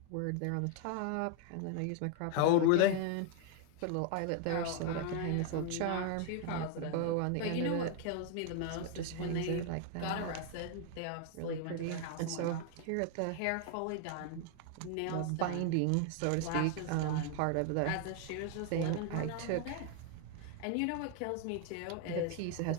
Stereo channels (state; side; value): different; both; correlation 0.00